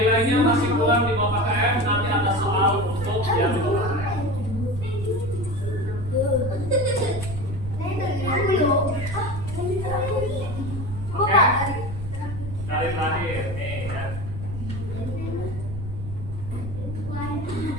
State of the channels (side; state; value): right; noise; rumble, 8 dB below the sound